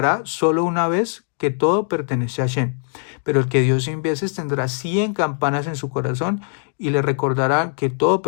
solo una vez que todo pertenece a Hashem. Pero el que dio 100 veces tendrá 100 campanas en su corazón y le recordará que todo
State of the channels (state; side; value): silent; right; 65 dB below the other